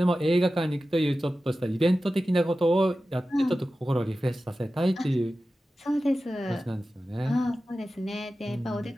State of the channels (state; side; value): normal; both; correlation 0.94